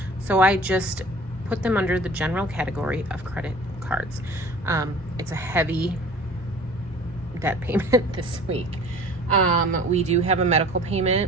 So I just put them under the general category of credit cards. It's a heavy debt payment this week. We do have a medical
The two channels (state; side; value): normal; both; correlation 0.45